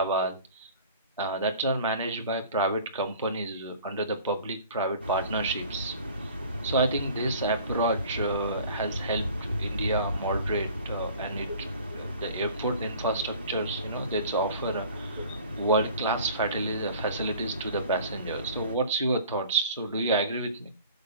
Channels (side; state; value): both; inverted; correlation -0.47